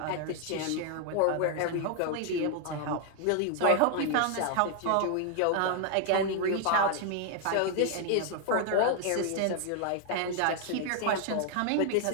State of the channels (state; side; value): different; both; correlation 0.00